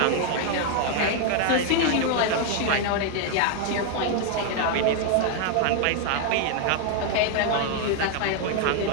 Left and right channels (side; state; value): both; different; correlation 0.01